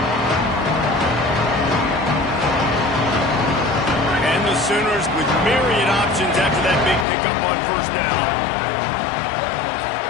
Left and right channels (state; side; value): drops out; right; at 7.1 s